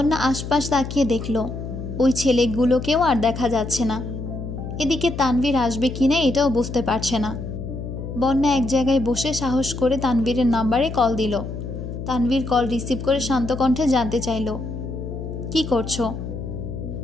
আশপাশ তাকিয়ে দেখল, ওই ছেলেগুলোকেও আর দেখা যাচ্ছে না। এদিকে তানভীর আসবে কিনা এটাও বুঝতে পারছে না। বন্যা এক জায়গায় বসে সাহস করে তানভীরের নাম্বারে কল দিল। তানভীর কল রিসিভ করে শান্ত কণ্ঠে জানতে চাইল, কি করছো?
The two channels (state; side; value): noise; left; hum, 7 dB below the sound